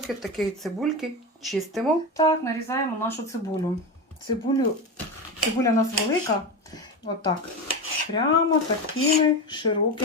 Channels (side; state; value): both; normal; correlation 0.20